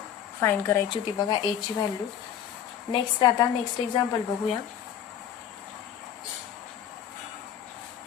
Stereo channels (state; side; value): quieter; right; 9.4 dB